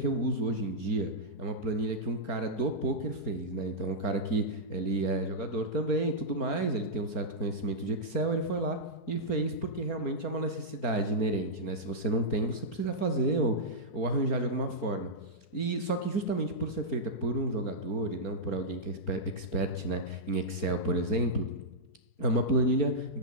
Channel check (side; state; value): right; late; 4.4 ms